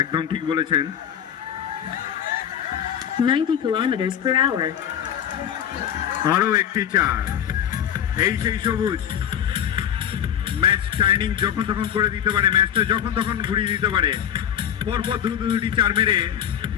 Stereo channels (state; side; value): quieter; right; 9.7 dB